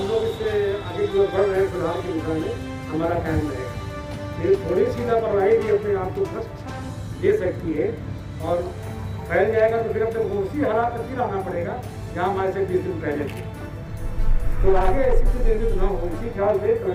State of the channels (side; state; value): both; identical; correlation 1.00